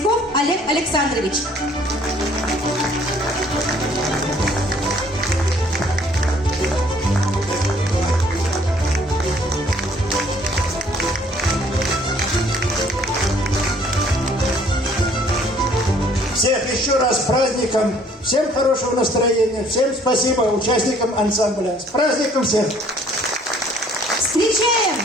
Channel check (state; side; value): normal; both; correlation 0.59